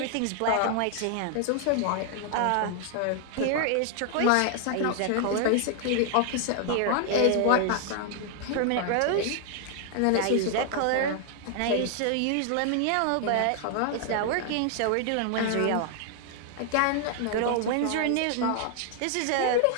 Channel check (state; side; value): different; both; correlation 0.00